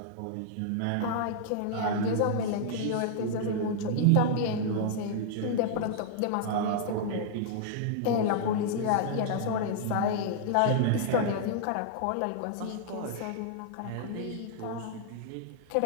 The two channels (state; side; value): different; both; correlation -0.01